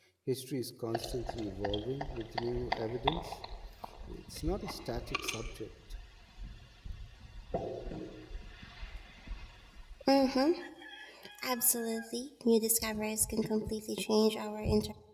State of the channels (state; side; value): identical; both; correlation 1.00